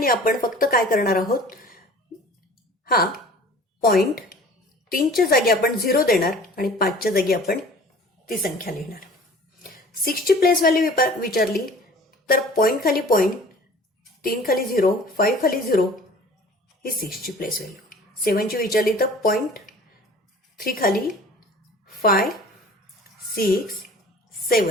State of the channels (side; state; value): both; normal; correlation 0.47